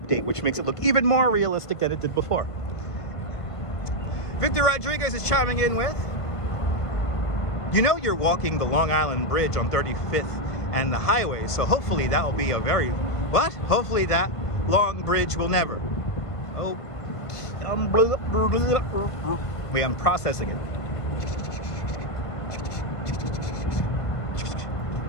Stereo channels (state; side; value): late; right; 1.5 ms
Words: which makes it look even more realistic than it did before. Victor Rodriguez is chiming in with, you know, you're walking the Long Island Bridge on 35th and the highway, so hopefully that will be a very, what? Hopefully that long bridge will never. Oh, wait, I'm processing it.